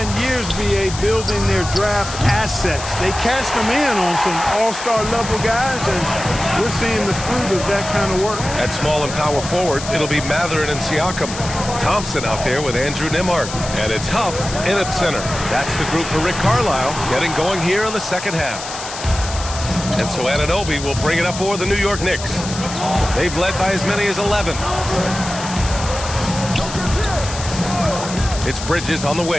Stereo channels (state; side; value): noise; left; hiss, 9 dB below the sound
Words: years, BA, building their draft assets. They cashed them in on some all-star level guys, and we're seeing the fruit of that kind of work. At small and power forward, it'll be Mathurin and Siakam. Thompson out there with Andrew Nembhard. And it's Huff in at center. That's the group for Rick Carlisle, getting going here in the second half. And so Anunoby will bring it up for the New York Knicks. They've led by as many as 11. It's Bridges on the